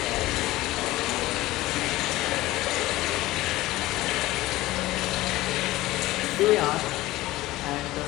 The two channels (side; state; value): right; quieter; 17.6 dB